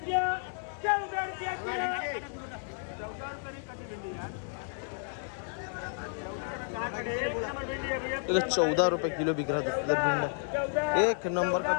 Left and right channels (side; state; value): right; silent; 57 dB below the other